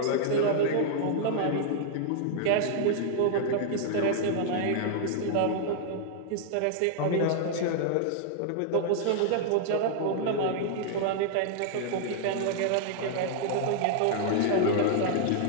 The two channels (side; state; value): both; different; correlation -0.01